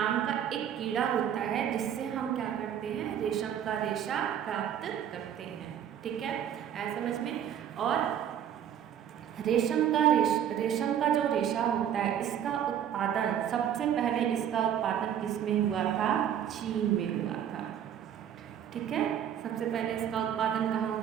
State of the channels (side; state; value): left; quieter; 9.6 dB